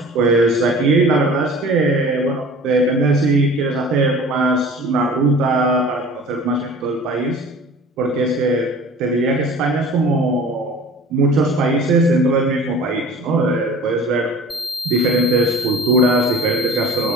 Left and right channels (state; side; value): normal; both; correlation 0.44